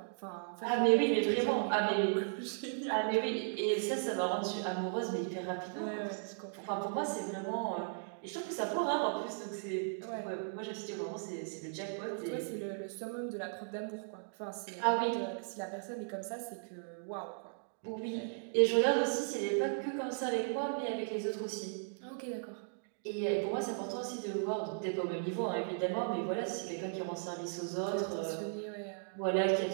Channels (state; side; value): silent; left; digital silence